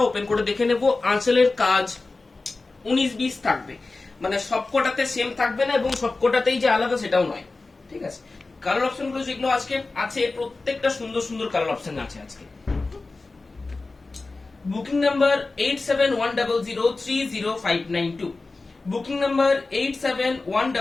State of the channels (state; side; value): quieter; right; 3.5 dB